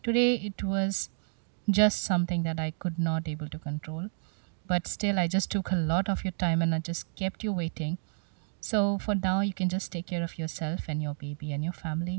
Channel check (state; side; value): silent; left; digital silence